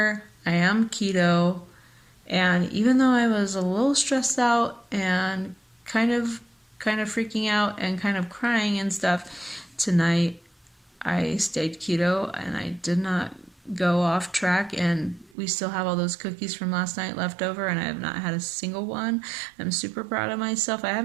I am keto. And even though I was a little stressed out and kind of freaking out and kind of crying and stuff, tonight I stayed keto and I did not go off track, and we still have all those cookies from last night left over, and I have not had a single one. I'm super proud of myself. I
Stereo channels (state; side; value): drops out; left; at 15.4 s